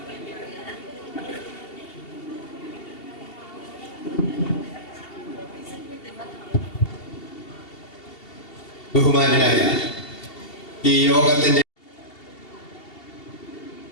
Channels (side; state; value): right; late; 2.7 ms